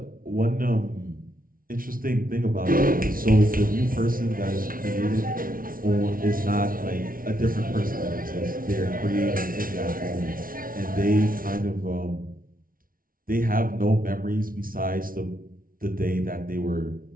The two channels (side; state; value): left; late; 0.42 ms